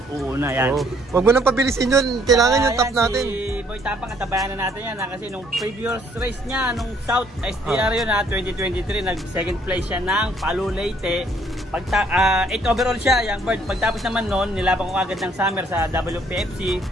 yan. Oh. Huwag mo nang pabilisin yun. Kailangan yung top Ayan, natin. Si Boy Tapang, katabayan na natin yan. Kasi nung previous race niya, nung South STR yun 2023, nag second place siya ng Palu Leyte. 8 overall siya, young bird. Pagtapos naman noon, nilaban ko agad ng summer sa WPFC,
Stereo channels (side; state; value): both; normal; correlation 0.64